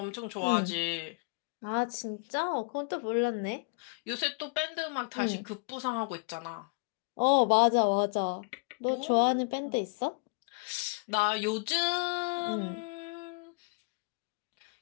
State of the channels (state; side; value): quieter; right; 32.0 dB